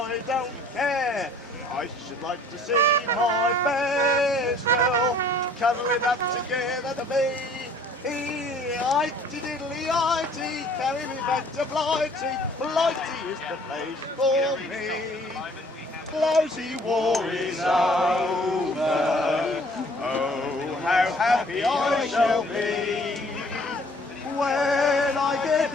don't care. I should like to see my best girl cuddling up together to me. Itty diddly itty, carry me back to Blighty. Blighty is the place for me. Blousy war is over. Oh, how happy I shall be when I get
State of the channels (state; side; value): normal; both; correlation 0.55